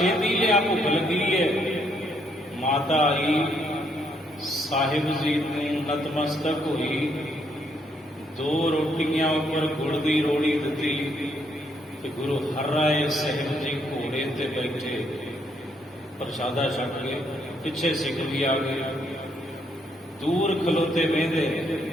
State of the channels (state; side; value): normal; both; correlation 0.72